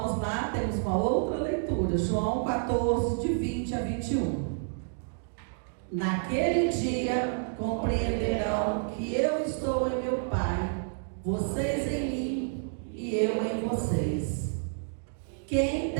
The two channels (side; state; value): left; silent; digital silence